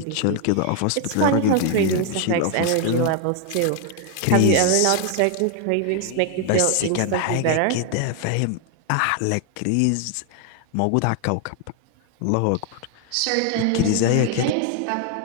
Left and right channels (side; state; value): both; different; correlation 0.00